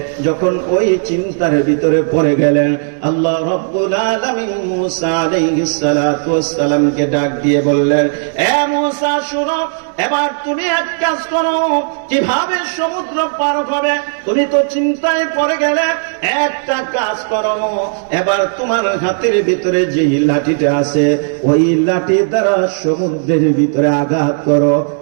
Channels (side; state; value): left; silent; digital silence